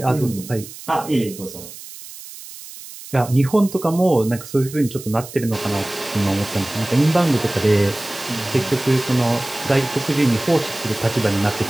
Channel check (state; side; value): noise; right; hiss, 15 dB below the sound